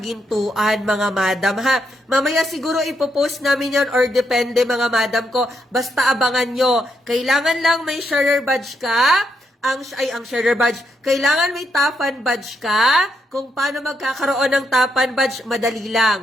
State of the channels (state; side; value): normal; both; correlation 0.79